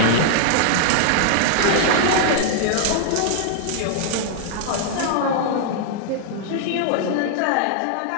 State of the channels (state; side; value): different; both; correlation -0.01